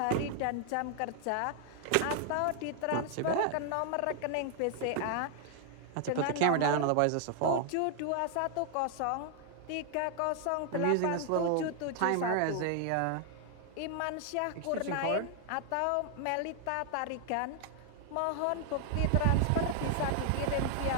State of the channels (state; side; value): different; both; correlation 0.00